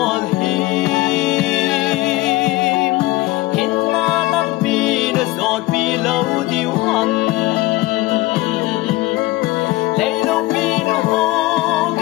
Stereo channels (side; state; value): right; quieter; 19.1 dB